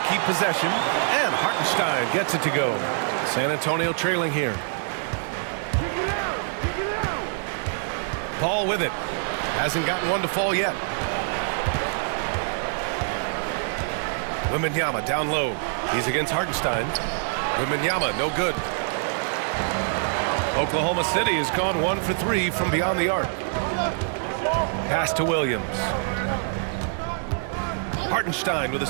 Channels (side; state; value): left; silent; digital silence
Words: possession. And Hartenstein gets it to go. San Antonio trailing here. Paul with it. Hasn't gotten one to fall yet. Wembanyama down low. He's against Hartenstein. Wembanyama, no good. Oklahoma City has gone 1 for 3 from beyond the arc. Pass to Williams. Hartenstein with a